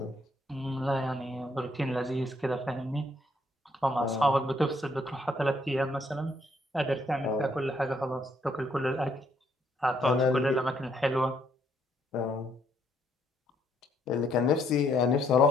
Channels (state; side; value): normal; both; correlation 0.70